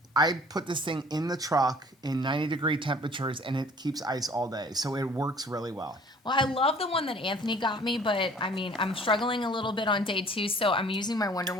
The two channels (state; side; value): normal; both; correlation 0.52